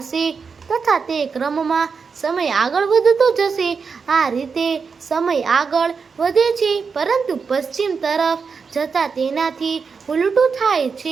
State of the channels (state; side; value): quieter; left; 5.4 dB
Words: હશે તથા તે ક્રમમાં સમય આગળ વધતો જશે. આ રીતે સમય આગળ વધે છે પરંતુ પશ્ચિમ તરફ જતાં તેનાથી ઉલટું થાય